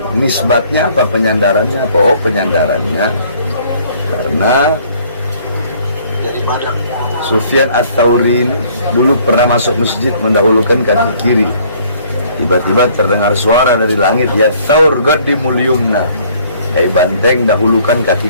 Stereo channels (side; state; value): both; inverted; correlation -0.60